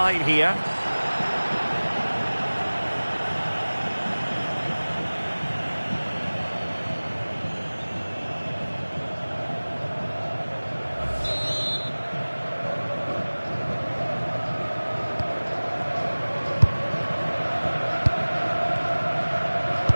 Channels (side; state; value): both; inverted; correlation -1.00